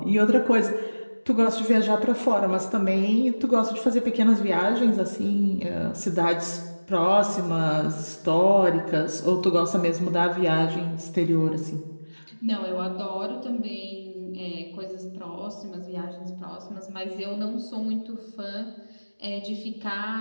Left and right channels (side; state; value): both; inverted; correlation -1.00